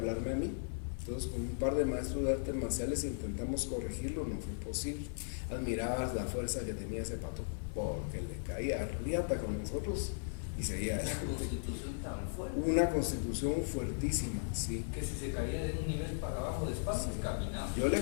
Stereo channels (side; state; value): right; silent; 53 dB below the other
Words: a mí. Entonces con un par de maestros de artes marciales intentamos corregirlo, no fue posible. Admirabas la fuerza que tenía ese pato, porque le caía riata con nosotros y seguía adelante. Constitución tan fuerte. Una constitución fuertísima, sí. Que si se caía de un nivel para abajo de espacio, caminaba. Yo